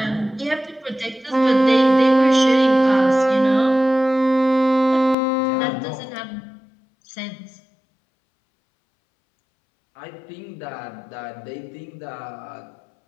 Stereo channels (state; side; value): drops out; right; at 5.2 s